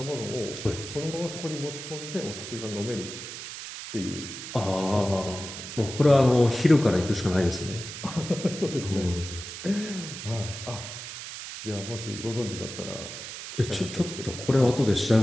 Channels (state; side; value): noise; right; hiss, 9 dB below the sound